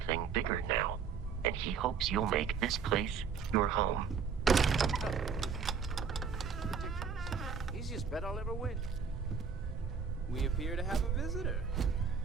bigger now, and he hopes you'll make this place your home. Ridiculous. Easiest bet I'll ever win. We appear to have a visitor.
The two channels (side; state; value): left; quieter; 6.2 dB